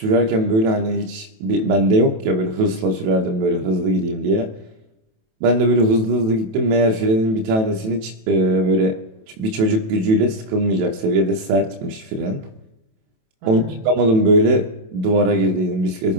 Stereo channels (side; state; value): left; late; 27 ms